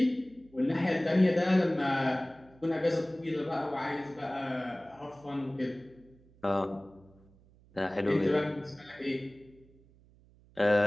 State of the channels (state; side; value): noise; right; hum, 28 dB below the sound